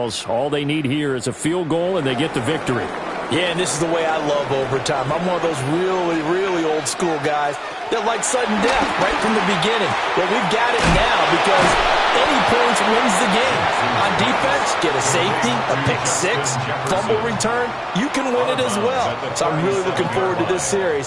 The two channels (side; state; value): both; identical; correlation 1.00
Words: all they need here is a field goal, and they get the victory. Yeah, and this is the way I love overtime. I'm one of those really, really old school guys that like sudden death right from the beginning. Well, we've got it now because any points wins the game. On defense, get a safety, a pick six, fumble return, you can win it as well. So I'm really looking forward to this